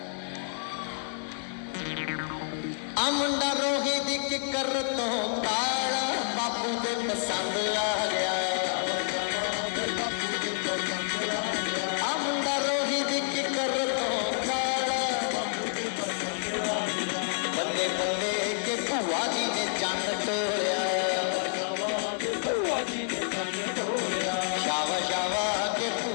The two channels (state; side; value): silent; right; digital silence